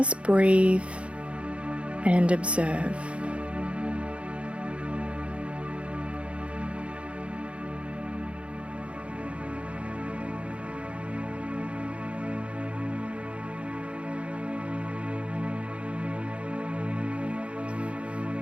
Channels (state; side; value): late; left; 0.060 ms